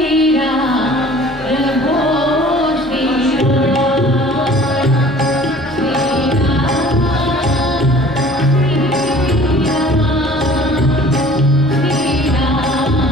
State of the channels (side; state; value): both; normal; correlation 0.49